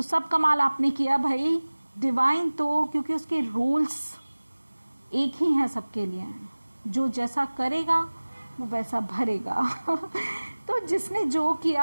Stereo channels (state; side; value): inverted; both; correlation -1.00